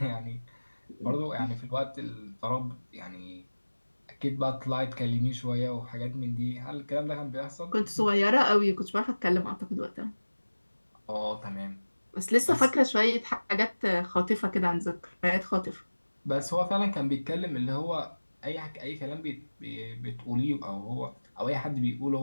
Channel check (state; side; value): inverted; both; correlation -1.00